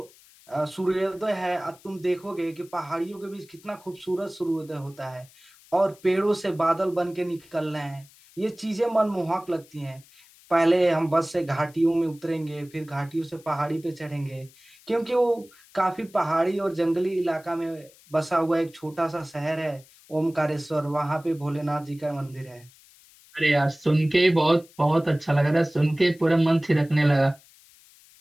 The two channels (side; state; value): left; noise; hiss, 26 dB below the sound